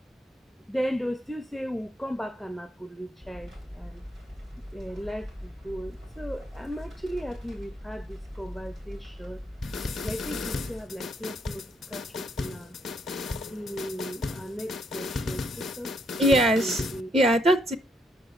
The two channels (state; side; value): normal; both; correlation 0.74